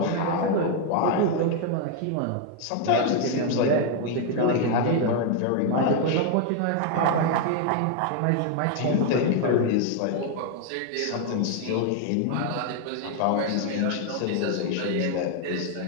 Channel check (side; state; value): both; different; correlation 0.00